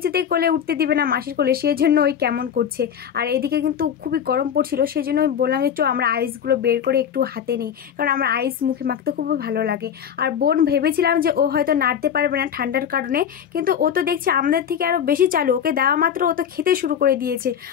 কোলে উঠতে দিবে না মাসির কোলে, সেই জন্য ওই কেমন করছে। আর এদিকে কিন্তু খুবই গরম পড়ছিল, সেই জন্য আমি বললাম যে আমরা আইসগুলো বের করে একটু হাতে নিই, কারণ আমার আইস মুখে মাখতে খুবই ভালো লাগে। আর বোন ভেবেছিলাম যে ও হয়তো নাড়তে পারবে না ঠান্ডার কারণে, কিন্তু ও তো দেখছি আমাদের থেকে আরও বেশি চালু, ওকে দেওয়া মাত্র ও তো খেতে শুরু করে দিয়েছে।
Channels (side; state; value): right; quieter; 8.6 dB